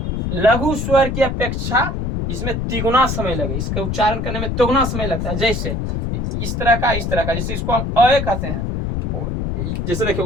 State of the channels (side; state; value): left; noise; rumble, 2 dB below the sound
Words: लघु स्वर की अपेक्षा इसमें तिगुना समय लगे, इसका उच्चारण करने में तिगुना समय लगता है। जैसे इस तरह का, जैसे इसको हम अ कहते हैं। जैसे देखिए